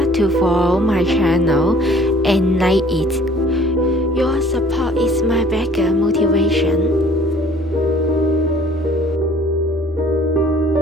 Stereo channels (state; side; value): normal; both; correlation 0.52